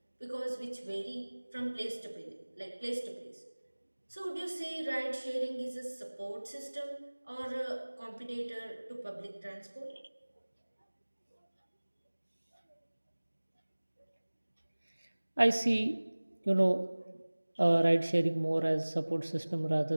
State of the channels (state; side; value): inverted; both; correlation -1.00